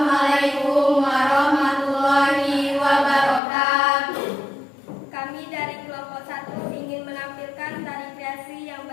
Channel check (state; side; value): drops out; right; at 3.4 s